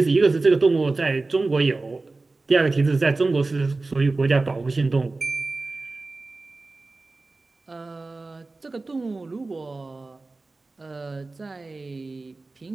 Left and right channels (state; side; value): quieter; left; 3.5 dB